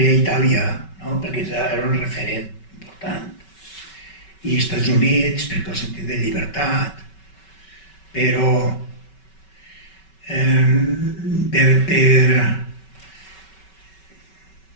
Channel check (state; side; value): late; right; 5.3 ms